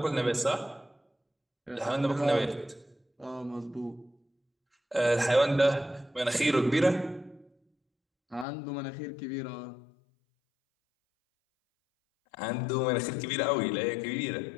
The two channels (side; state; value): right; drops out; at 8.5 s